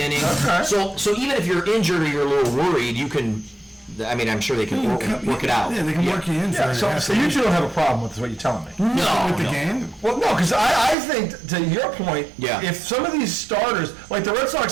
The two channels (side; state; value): left; drops out; at 11.0 s